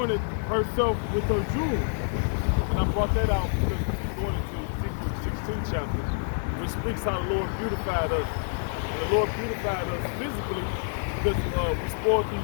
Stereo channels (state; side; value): silent; right; digital silence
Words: herself with her jewels. And I brought that out because we're going into Ezekiel 16 chapter, which speaks how the Lord beautified us. And the Lord beautified us physically because we spoiled the